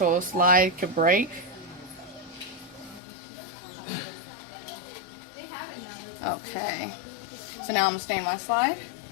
slide could break. Okay. So now I'm gonna stain my slide.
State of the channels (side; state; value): right; drops out; at 3.0 s